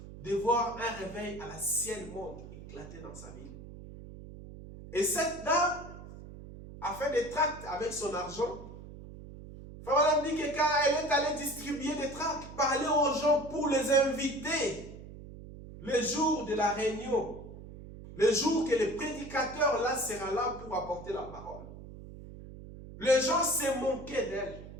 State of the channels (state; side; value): noise; right; hum, 14 dB below the sound